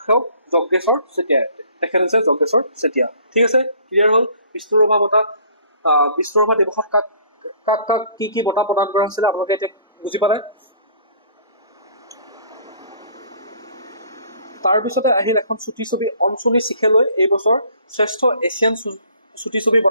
যজ্ঞেশ্বৰ চেতিয়া। তেখেত হৈছে যজ্ঞেশ্বৰ চেতিয়া। ঠিক আছে, ক্লিয়াৰ হ'ল। বিষ্ণু ৰাভা বঁটা, বিষ্ণু ৰাভা দিৱসত কাক কি বঁটা প্ৰদান কৰা হৈছিলে আপোনালোকে এতিয়া বুজি পালে। তাৰপিছতে আহিল এখন চুটি ছবি অঞ্চনী চিখেলৈ এই বছৰ শ্ৰেষ্ঠ এছিয়ান চুটি ছবি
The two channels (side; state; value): both; inverted; correlation -0.56